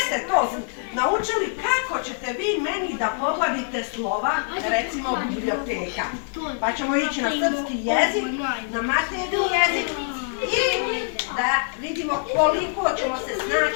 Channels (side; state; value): right; silent; 62 dB below the other